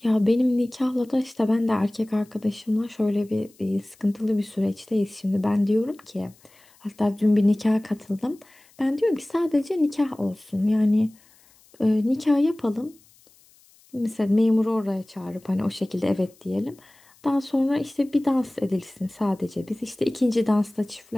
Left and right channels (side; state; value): left; noise; hiss, 29 dB below the sound